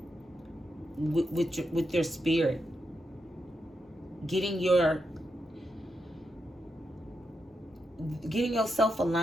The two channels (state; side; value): normal; both; correlation 0.85